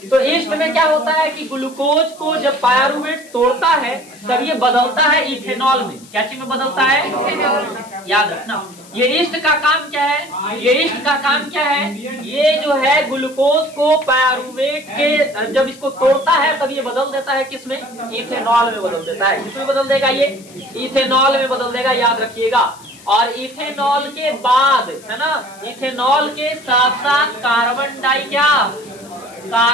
तो ईस्ट में क्या होता है कि ग्लूकोज को जब पायरुवेट तोड़ता है तब ये बदलता है इथेनॉल में। क्या चीज में बदलता है, याद रखना। ये ईस्ट का काम क्या है, ये ईस्ट का काम क्या है, ये जो है ग्लूकोज को पायरुवेट के जब इसको तोड़ता है तब ये बदल देता है किसमें, इथेनॉल में बदल देता है। किसमें बदल देगा, ये इथेनॉल में बदल देगा, याद रखिएगा। और इथेनॉल के बाद, है ना, इथेनॉल के साथ साथ कार्बन डाई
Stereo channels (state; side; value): noise; left; hiss, 22 dB below the sound